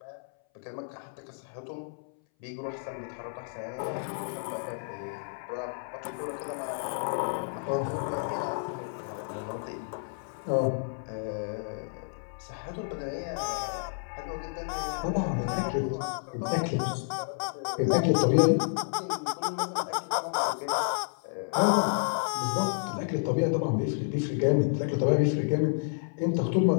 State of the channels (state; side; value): silent; right; 58 dB below the other